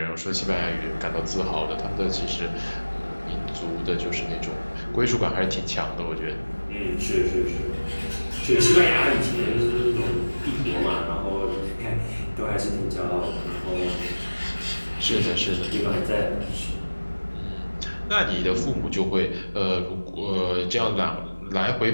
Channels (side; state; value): both; inverted; correlation -1.00